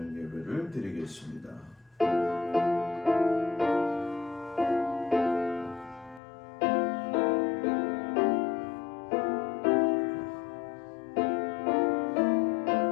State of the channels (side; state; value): right; drops out; at 6.2 s